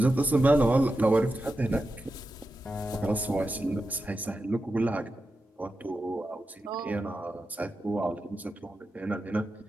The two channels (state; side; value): normal; both; correlation 0.90